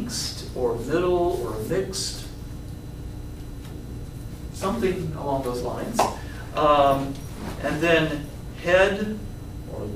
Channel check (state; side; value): identical; both; correlation 1.00